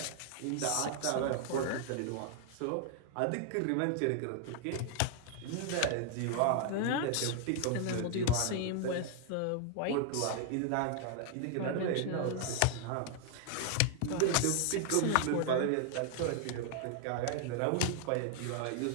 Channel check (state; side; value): different; both; correlation 0.00